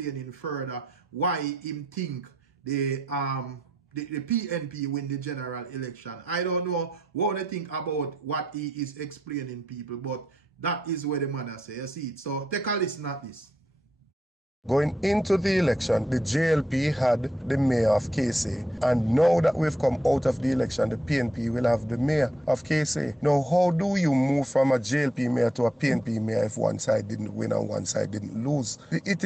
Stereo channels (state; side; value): normal; both; correlation 0.79